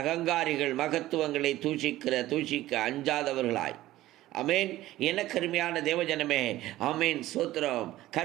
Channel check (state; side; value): quieter; left; 15.7 dB